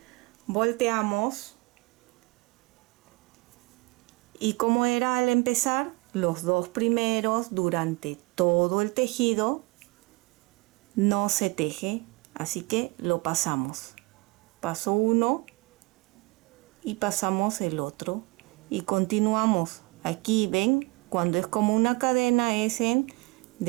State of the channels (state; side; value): quieter; left; 26.9 dB